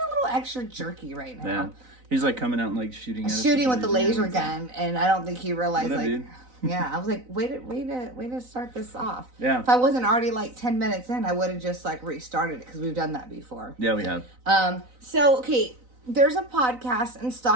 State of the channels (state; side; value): late; left; 4.0 ms